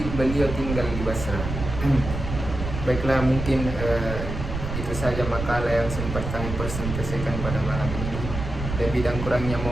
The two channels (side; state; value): right; noise; rumble, 6 dB below the sound